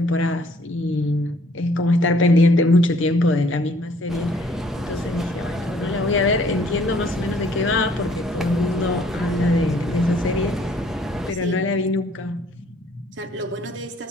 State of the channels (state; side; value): normal; both; correlation 0.60